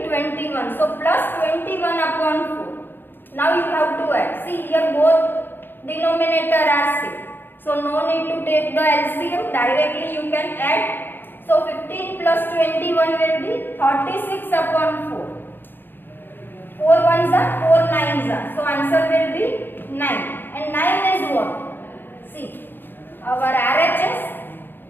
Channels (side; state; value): right; late; 0.097 ms